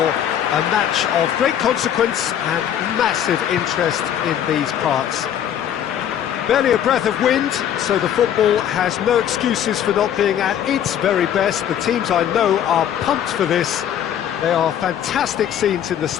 match of great consequence and massive interest in these parts. Barely a breath of wind, so the football has no excuses for not being at its very best. The teams I know are pumped for this. There are fantastic scenes in the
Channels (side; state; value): right; quieter; 9.9 dB